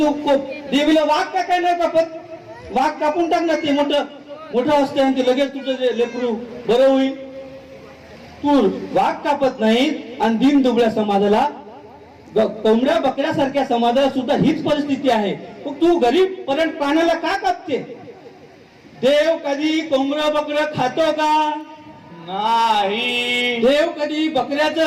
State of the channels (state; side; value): identical; both; correlation 1.00